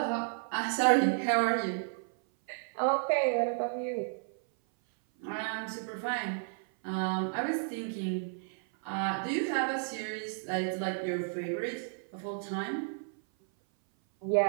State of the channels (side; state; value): left; silent; 56 dB below the other